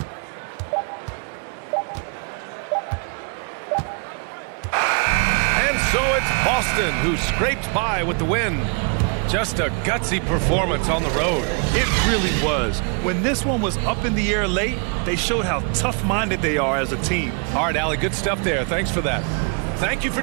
And so it's Boston who scraped by with the win. Just a gutsy performance on the road. It really was. When this one was up in the air late, they showed how tough-minded they are as a team. All right, Allie, good stuff there. Thanks for that. Thank you for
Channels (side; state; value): left; quieter; 37.6 dB